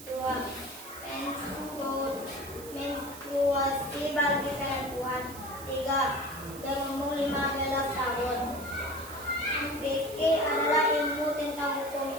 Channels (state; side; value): noise; right; hiss, 15 dB below the sound